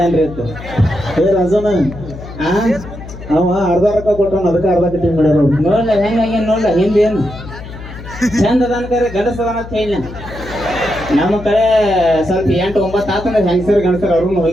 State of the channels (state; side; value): noise; left; hum, 13 dB below the sound